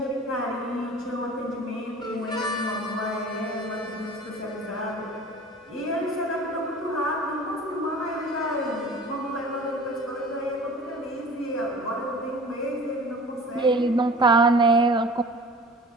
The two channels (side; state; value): both; normal; correlation 0.42